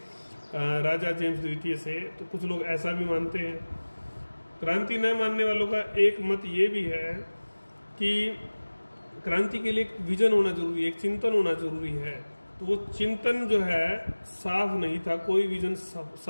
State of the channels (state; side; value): inverted; both; correlation -1.00